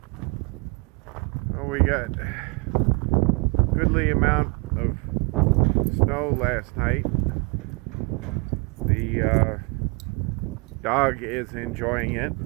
Oh, we got a goodly amount of snow last night. The dog is enjoying it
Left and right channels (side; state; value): left; quieter; 31.6 dB